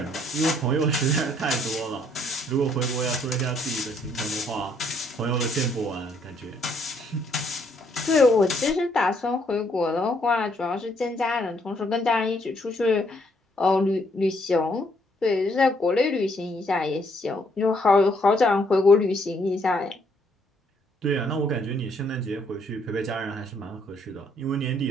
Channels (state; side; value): normal; both; correlation 0.68